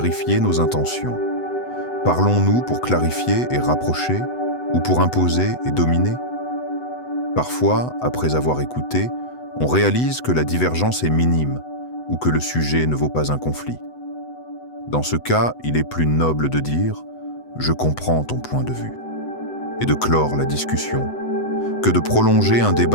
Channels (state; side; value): late; right; 8.0 ms